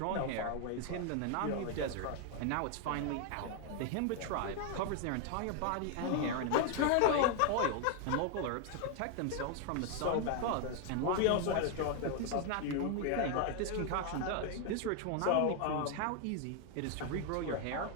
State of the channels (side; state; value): both; different; correlation 0.00